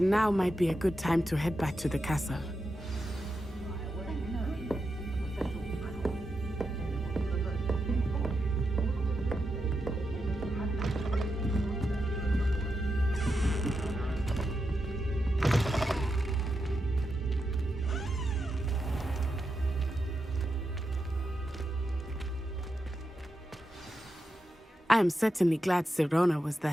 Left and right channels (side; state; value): both; normal; correlation 0.87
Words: now might be a good time to head back to the castle. I am certainly glad Serona was